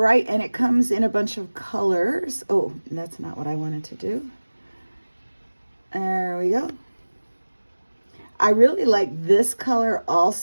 and it comes in a bunch of colors. Oh, that's not what I wanted to do. There we go. I really like this color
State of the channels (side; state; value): both; inverted; correlation -1.00